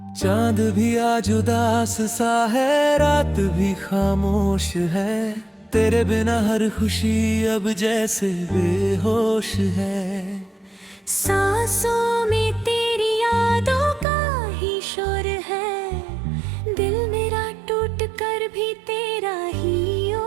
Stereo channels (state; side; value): drops out; left; at 14.1 s